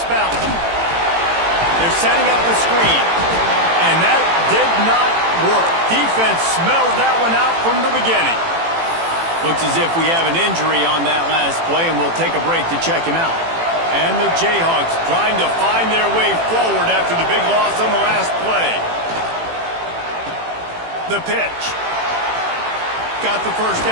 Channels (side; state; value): left; late; 18 ms